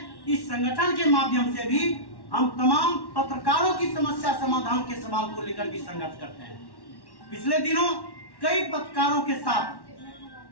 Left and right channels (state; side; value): late; right; 1.1 ms